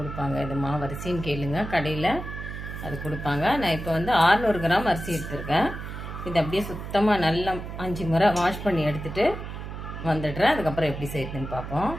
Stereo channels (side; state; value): right; noise; hum, 8 dB below the sound